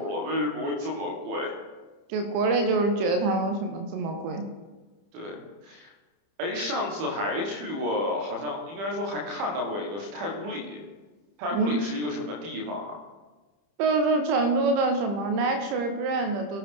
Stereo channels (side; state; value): left; late; 30 ms